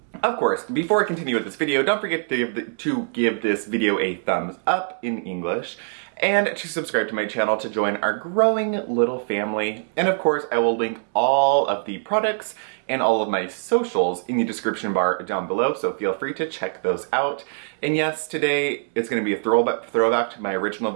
Of course, before I continue with this video, don't forget to give this video a thumbs up in English and to subscribe to my channel to join our growing little family. And of course, I will link all of the products and all of my socials in the description bar down below, so feel free to check those out. And yes, today it's going to be a throwback to my original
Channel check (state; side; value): silent; left; digital silence